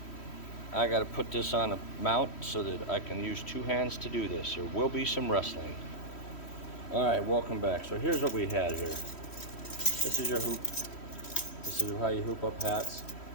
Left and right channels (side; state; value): right; late; 3.1 ms